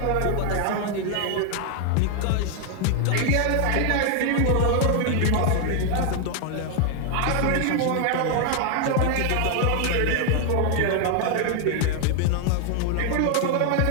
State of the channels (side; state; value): both; different; correlation 0.00